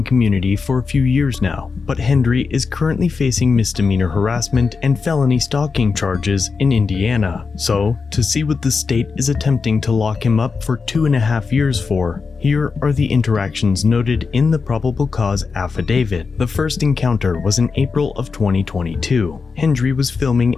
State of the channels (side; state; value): right; quieter; 4.9 dB